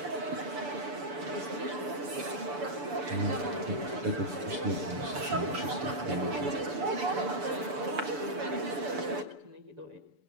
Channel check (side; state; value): left; late; 6.9 ms